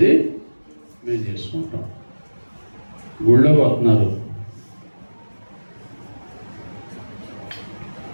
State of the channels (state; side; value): inverted; both; correlation -1.00